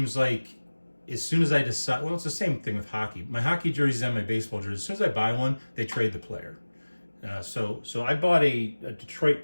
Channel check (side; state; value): both; inverted; correlation -1.00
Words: like as soon as I decide, well, it's the same thing with hockey. My hockey jerseys and my baseball jerseys, as soon as I buy one, they trade the player. So I bought a Detroit